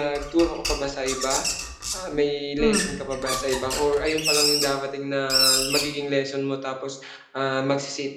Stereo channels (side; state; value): both; identical; correlation 1.00